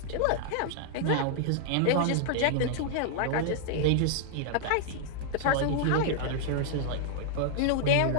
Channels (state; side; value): different; both; correlation -0.01